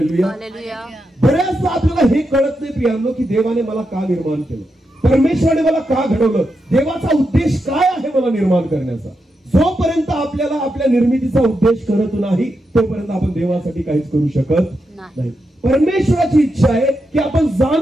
हालेलुया. बऱ्याचदा आपल्याला हे कळत नाही प्रियांनो की देवाने मला का निर्माण केलं, परमेश्वराने मला का घडवलं, देवाचा उद्देश काय आहे मला निर्माण करण्याचा. जोपर्यंत आपल्याला आपल्या निर्मितीचा उद्देश कळत नाही तोपर्यंत आपण देवासाठी काहीच करू शकत नाही. परमेश्वराची इच्छा आहे की आपण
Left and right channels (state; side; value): normal; both; correlation 0.86